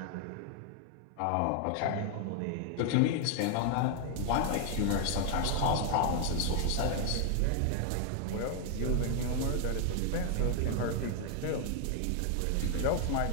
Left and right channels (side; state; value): both; different; correlation 0.00